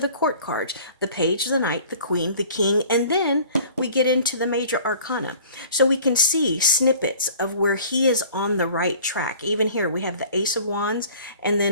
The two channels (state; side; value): inverted; both; correlation -0.48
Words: court cards, the Page, the Knight, the Queen, the King, and then we get into the major arcana. So we can see snippets of where he is on the right track. Even here we have the Ace of Wands and